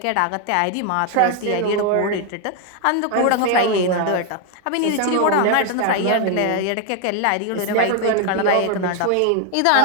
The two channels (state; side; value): different; both; correlation 0.01